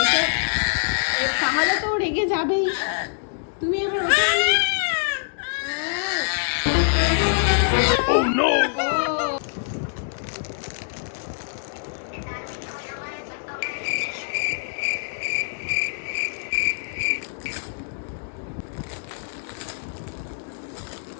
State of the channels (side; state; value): right; silent; digital silence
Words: তাহলে তো রেগে যাবেই। তুমি এবার ওটা